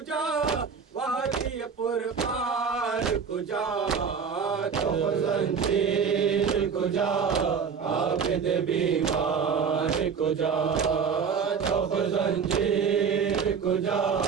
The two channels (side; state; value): left; quieter; 6.2 dB